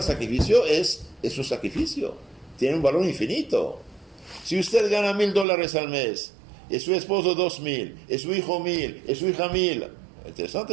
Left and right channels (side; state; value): left; drops out; at 5.5 s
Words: sacrificio es un sacrificio, tiene un valor infinito. Si usted gana $1,000 al mes, es su esposo 2,000, es su hijo 1,000, es su hija 1,000,